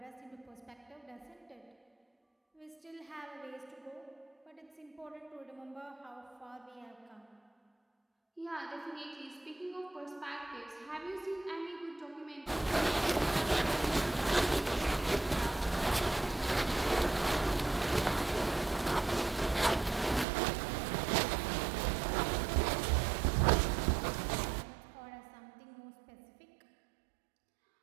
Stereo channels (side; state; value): left; drops out; at 20.2 s